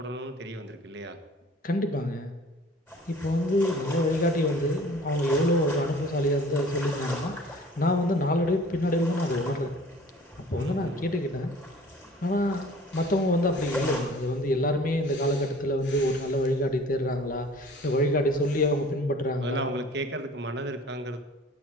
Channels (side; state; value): both; normal; correlation 0.49